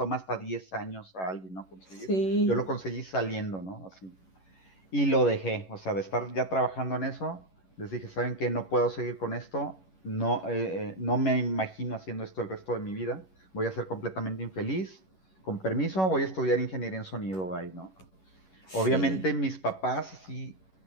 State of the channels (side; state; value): right; late; 11 ms